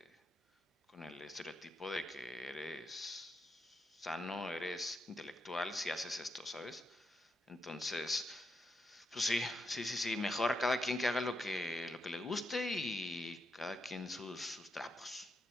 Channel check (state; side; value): normal; both; correlation 0.83